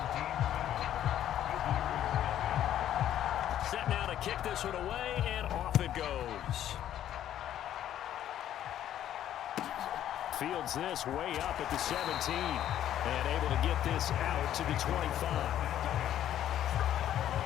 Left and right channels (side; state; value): right; quieter; 11.4 dB